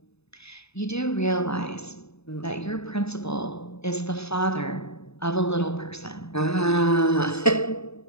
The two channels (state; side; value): late; right; 0.79 ms